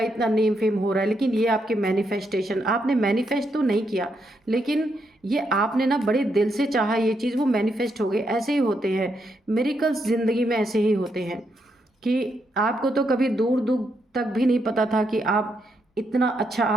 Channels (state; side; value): normal; both; correlation 0.79